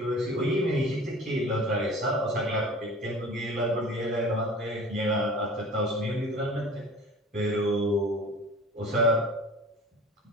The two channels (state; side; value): normal; both; correlation 0.41